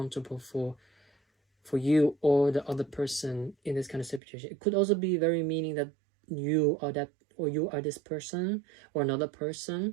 for you or the other person in this kind of situation. It could also be very meaning that you are that, or you are this person, or another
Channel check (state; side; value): drops out; left; at 4.2 s